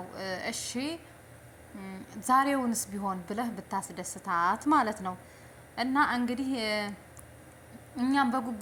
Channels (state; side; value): identical; both; correlation 1.00